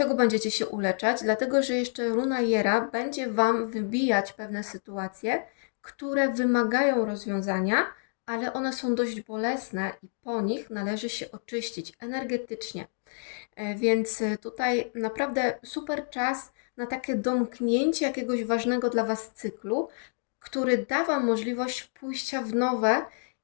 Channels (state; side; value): silent; right; digital silence